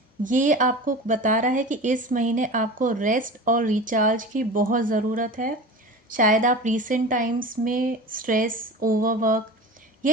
ये आपको बता रहा है कि इस महीने आपको रेस्ट और रिचार्ज की बहुत ज़रूरत है। शायद आप रीसेंट टाइम्स में स्ट्रेस, ओवरवर्क या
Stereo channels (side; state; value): both; normal; correlation 0.33